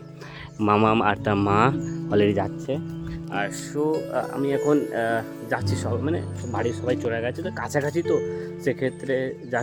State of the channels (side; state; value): both; identical; correlation 1.00